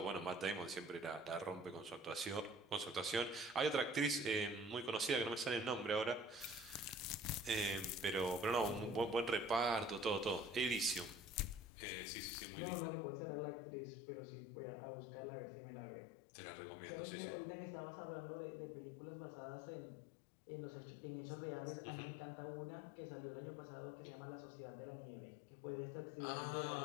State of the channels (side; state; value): right; drops out; at 11.7 s